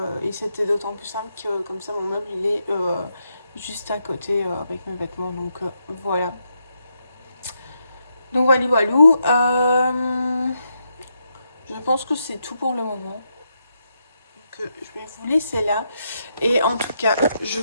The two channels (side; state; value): both; inverted; correlation -0.81